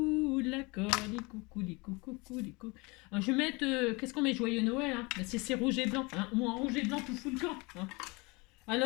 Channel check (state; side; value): quieter; right; 26.5 dB